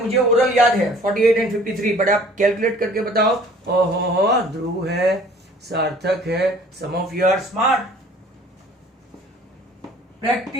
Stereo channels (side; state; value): both; normal; correlation 0.52